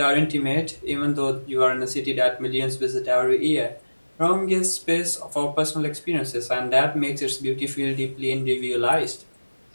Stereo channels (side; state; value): both; inverted; correlation -1.00